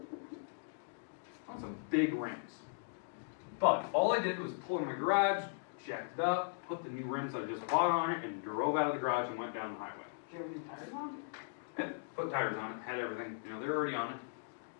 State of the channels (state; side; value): silent; right; digital silence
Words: want some big rims. But all I did was pull in my garage, jacked it up, put the new rims I just bought on it, and drove out of the garage and went down the highway. Do you have any tires on? Yeah, put tires on it, had everything, they're already on it.